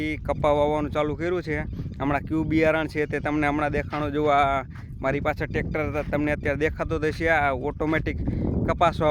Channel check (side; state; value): both; identical; correlation 1.00